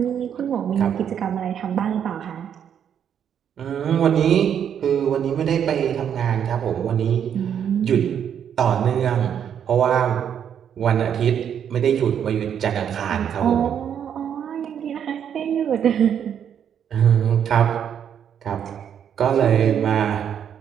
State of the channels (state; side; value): quieter; left; 8.7 dB